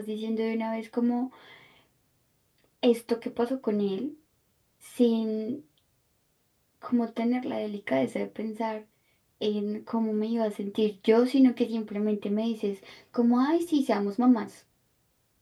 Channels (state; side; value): identical; both; correlation 1.00